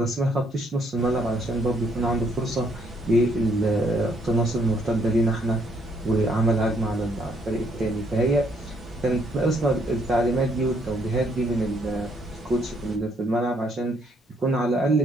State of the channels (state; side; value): normal; both; correlation 0.70